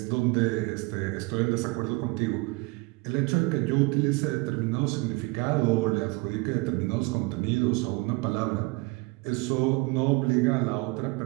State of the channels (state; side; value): quieter; left; 25.6 dB